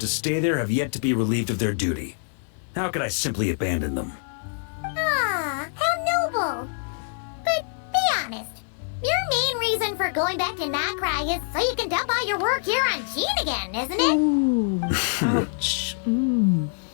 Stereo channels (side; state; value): right; silent; 58 dB below the other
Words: to stay there have yet to be relieved of their duty. How could I simply abandon them? How noble. But be honest, your main reason for going back to Nodcry is so you can dump all your work here on Gene again, isn't it? Ooh, ouch.